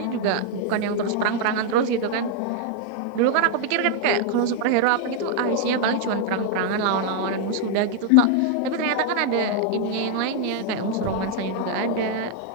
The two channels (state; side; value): different; both; correlation 0.00